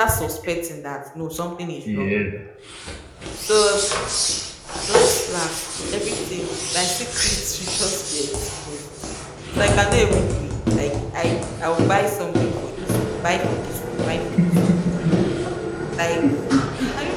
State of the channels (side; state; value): both; identical; correlation 1.00